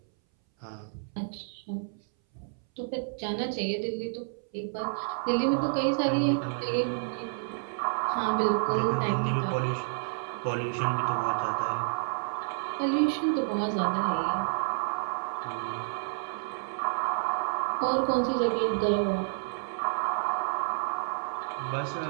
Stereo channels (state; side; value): silent; left; 58 dB below the other